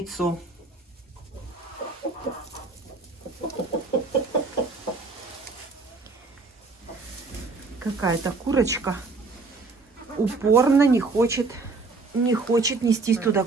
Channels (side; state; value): left; quieter; 3.9 dB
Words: Какая-то курочка упорно не хочет нестись туда,